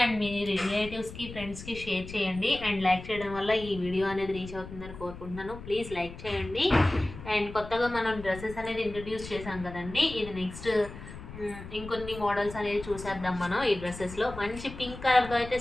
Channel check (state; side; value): noise; left; rumble, 13 dB below the sound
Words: అండ్ మీ రిలేటివ్స్కి ఫ్రెండ్స్కి షేర్ చేయండి. అండ్ లైక్ చేయడం వల్ల ఈ వీడియో అనేది రీచ్ అవుతుందని కోరుకుంటున్నాను. ప్లీజ్ లైక్ చేయండి. అండ్ కొత్తగా మనం డ్రెస్సెస్ అనేది ఇంట్రడ్యూస్ చేసాం కదండి, ఇది నెక్స్ట్ ఇంకొన్ని మోడల్స్ అనేది చూసేద్దాం. మనం ఈ డ్రెస్సెస్లో మంచి పింక్ కలర్తో అయితే